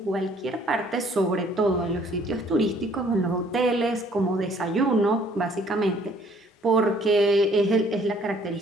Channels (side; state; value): both; normal; correlation 0.60